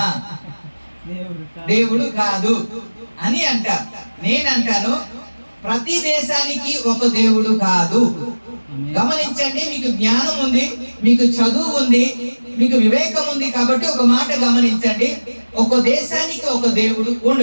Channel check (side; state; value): both; inverted; correlation -1.00